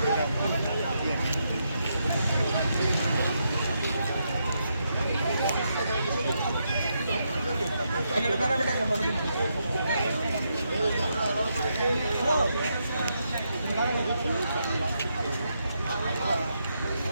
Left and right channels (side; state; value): both; inverted; correlation -0.81